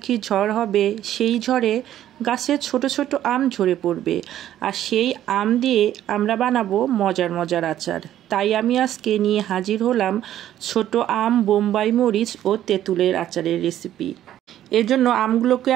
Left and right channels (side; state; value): left; quieter; 12.0 dB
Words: ঝড় হবে। সেই ঝড়ে গাছে ছোট ছোট আম ঝরে পড়বে, আর সেই আম দিয়ে আমরা বানাবো মজার মজার আচার। তাই আমি আজকে নিয়ে হাজির হলাম ছোট আম, বোম্বাই মরিচ ও তেঁতুলের আচারের রেসিপি। এর জন্য আমগুলোকে